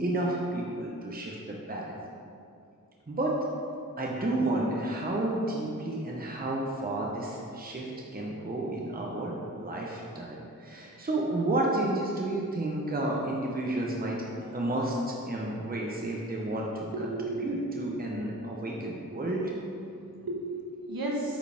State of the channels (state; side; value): normal; both; correlation 0.42